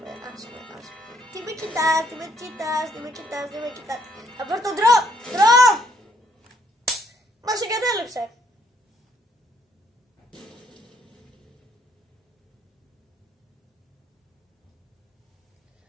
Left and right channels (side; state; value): both; normal; correlation 0.69